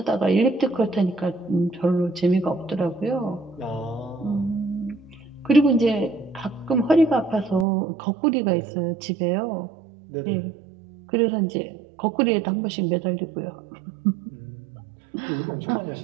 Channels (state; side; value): drops out; left; at 7.7 s